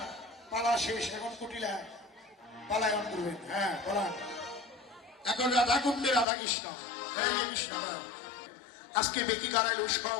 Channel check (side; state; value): right; drops out; at 6.2 s